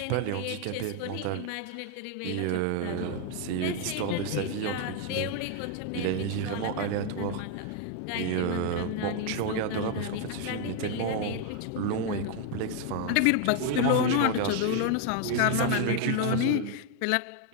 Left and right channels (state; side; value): different; both; correlation 0.01